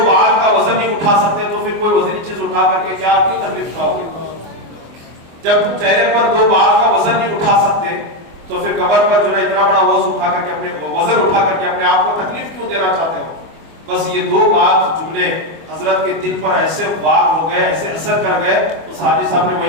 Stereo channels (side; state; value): left; late; 24 ms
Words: بال کا وزن نہیں اٹھا سکتے تو پھر کوئی وزنی چیز اٹھا کر کے کیا کیوں تکلیف کھاؤ گے؟ جب تم چہرے پر 2 بال کا وزن نہیں اٹھا سکتے تو پھر کمر پر جو ہے اتنا بڑا وزن اٹھا کر کے اپنے آپ کو تکلیف کیوں دینا چاہتے ہو؟ بس یہ 2 بات جملے حضرت کے دل پر ایسے وار ہو گئے, ایسے اثر کر گئے. اس حاجی صاحب نے